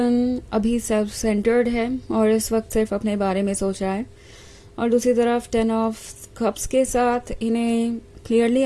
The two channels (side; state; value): both; identical; correlation 1.00